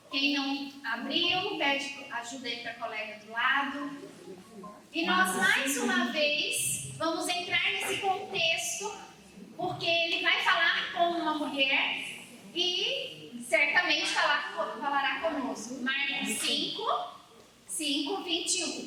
Quem não abriu, pede ajuda aí para a colega do lado. E nós, mais uma vez, vamos entrar nesse contexto, porque ele vai falar com uma mulher e certamente falará conosco. Marcos 5,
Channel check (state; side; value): identical; both; correlation 1.00